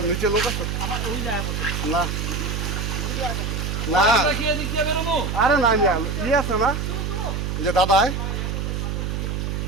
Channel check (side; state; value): right; noise; hum, 2 dB below the sound